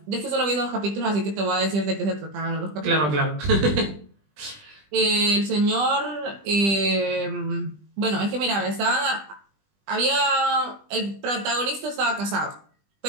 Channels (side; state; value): left; late; 20 ms